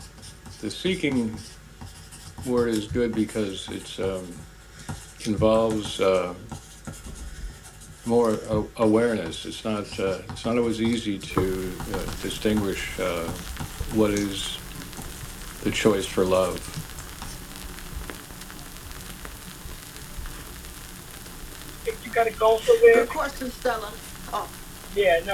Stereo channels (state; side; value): identical; both; correlation 1.00